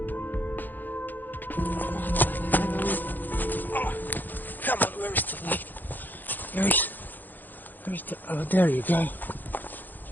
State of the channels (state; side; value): late; right; 0.087 ms